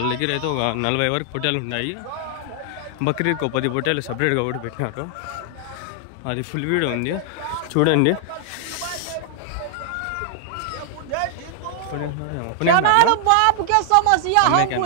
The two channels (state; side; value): different; both; correlation 0.00